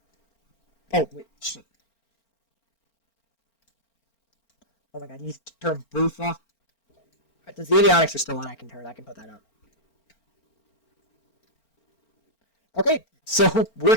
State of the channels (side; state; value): right; late; 4.4 ms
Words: Oh, wait, shit. Oh my god, I need to turn both off. Right, the avionics are still on, I can put that up. Okay, so we're